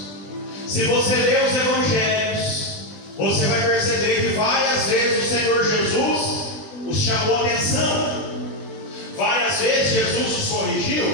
Se você ler os evangelhos, você vai perceber que várias vezes o Senhor Jesus os chamou a atenção, várias vezes Jesus os corrigiu,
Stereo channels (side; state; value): right; late; 20 ms